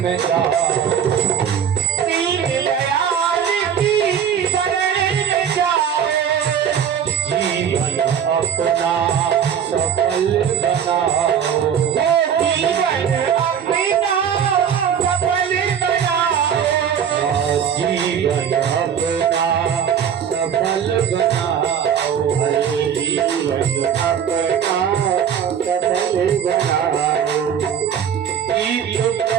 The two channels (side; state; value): left; quieter; 8.3 dB